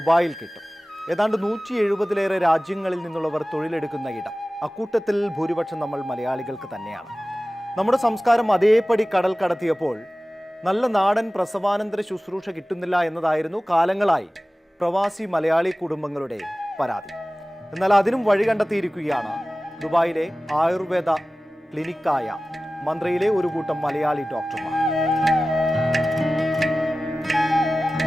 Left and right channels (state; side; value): normal; both; correlation 0.97